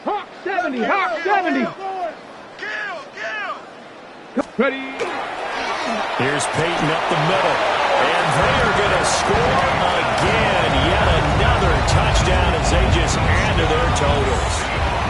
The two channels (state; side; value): identical; both; correlation 1.00